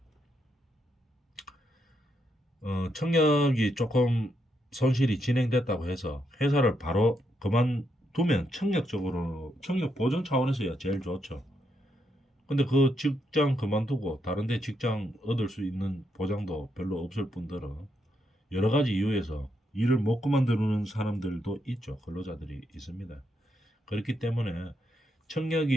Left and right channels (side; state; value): both; normal; correlation 0.79